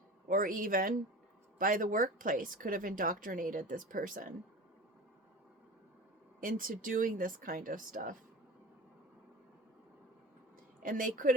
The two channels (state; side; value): normal; both; correlation 0.34